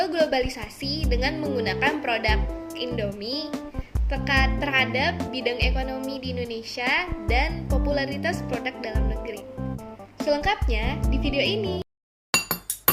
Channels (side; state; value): both; identical; correlation 1.00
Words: globalisasi dengan menggunakan produk Indomie terhadap bidang ekonomi di Indonesia dan popularitas produk dalam negeri. Selengkapnya di video ini.